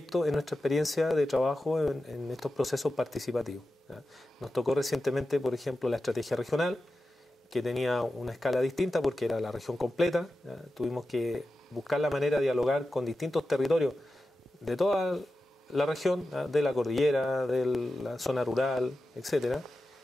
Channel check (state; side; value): normal; both; correlation 0.92